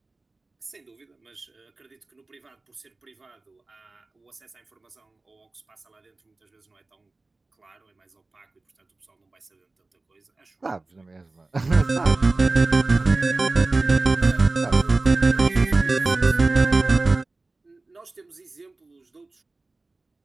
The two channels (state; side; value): quieter; left; 3.3 dB